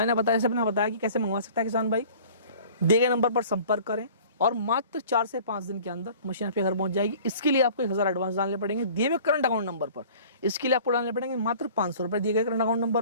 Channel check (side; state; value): both; inverted; correlation -0.47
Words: बताया कि कैसे मंगवा सकता है किसान भाई। दिए गए नंबर पर संपर्क करें और मात्र 4 से 5 दिन के अंदर मशीन आपके घर पहुंच जाएगी। इसके लिए आपको 1000 एडवांस डालने पड़ेंगे दिए हुए करंट अकाउंट नंबर पर। इसके लिए आपको डालने पड़ेंगे मात्र 500 रुपये दिए गए करंट अकाउंट